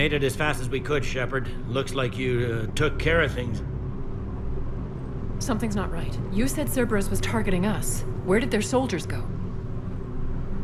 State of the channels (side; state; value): both; identical; correlation 1.00